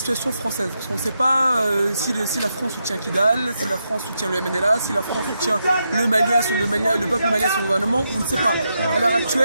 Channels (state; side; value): inverted; both; correlation -0.84